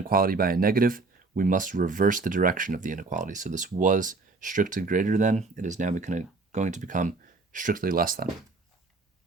by a negative, we must reverse the direction of the inequality. So this was strictly greater than. It is now going to become strictly less than.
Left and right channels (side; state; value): left; quieter; 3.8 dB